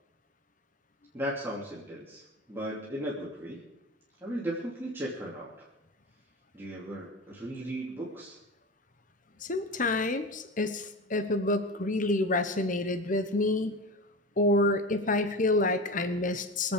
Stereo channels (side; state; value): both; normal; correlation 0.28